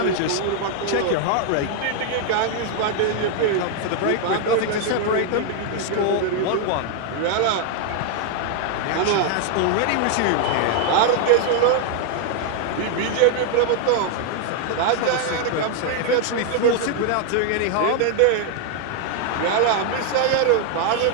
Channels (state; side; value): different; both; correlation 0.00